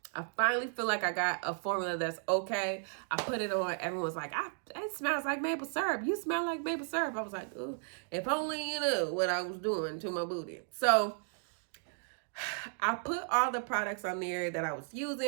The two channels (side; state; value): left; silent; 55 dB below the other